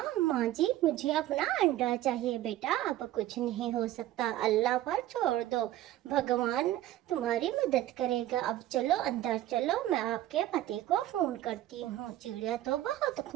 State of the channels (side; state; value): left; quieter; 14.2 dB